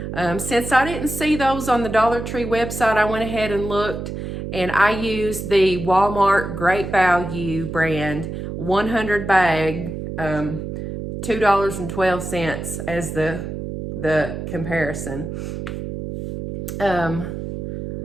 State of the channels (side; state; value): right; noise; hum, 6 dB below the sound